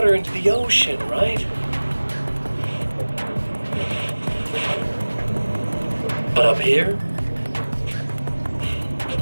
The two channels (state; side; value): inverted; both; correlation -1.00